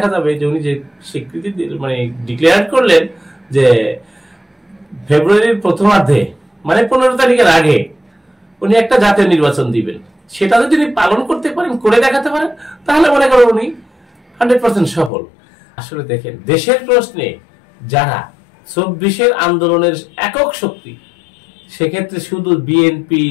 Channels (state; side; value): drops out; right; at 15.1 s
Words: যাবে যে উনি যে স্বীকৃতি মানে ডিক্লেয়ার করলেন যে ফেব্রুয়ারির প্রথমার্ধে, মানে 15 তারিখের আগে উনি একটা জাতীয় নির্বাচন দিবেন। সেটা যদি উনি পালন করতে পারেন, করে দেখাতে পারেন, তাহলে মনে করেন উনি 100% সফল। আসলে দেখেন, দেশের প্রশ্নে যারা 24-এর আন্দোলনের একক শক্তি, সেক্ষেত্রে শুধু বিএনপি,